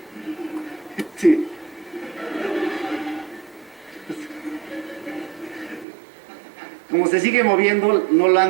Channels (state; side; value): drops out; left; at 5.9 s